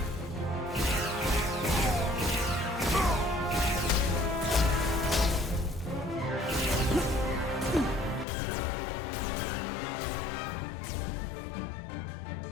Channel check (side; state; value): right; drops out; at 8.2 s